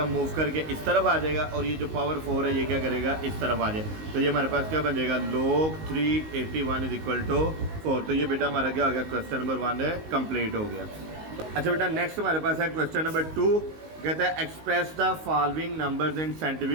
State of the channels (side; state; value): left; late; 19 ms